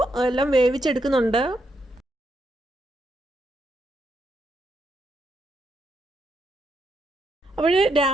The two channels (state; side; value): normal; both; correlation 0.79